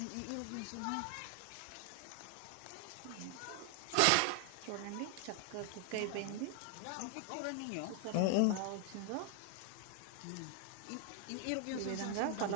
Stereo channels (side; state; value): both; different; correlation 0.00